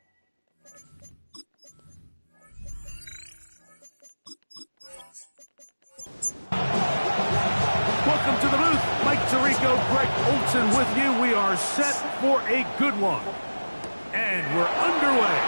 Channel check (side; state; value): both; inverted; correlation -1.00